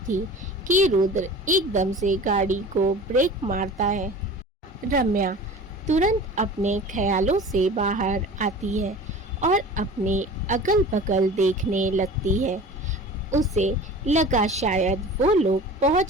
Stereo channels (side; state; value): both; normal; correlation 0.39